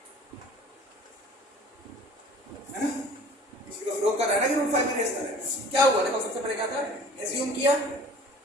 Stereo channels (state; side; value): normal; both; correlation 0.47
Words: है ना, इसी का विरोध कर रहा है ना कि √5 इरेशनल है। क्या हुआ देखो, सबसे पहले क्या था, एज्यूम किया